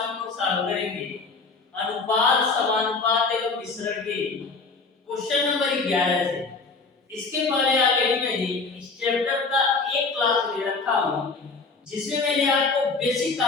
हम लोग सॉल्व करेंगे अनुपात समानुपात एवं मिश्रण के क्वेश्चन नंबर 11 से। इसके पहले ऑलरेडी मैंने इस चैप्टर का एक क्लास ले रखा हूं जिसमें मैंने आपको बेसिक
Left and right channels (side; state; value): right; quieter; 4.2 dB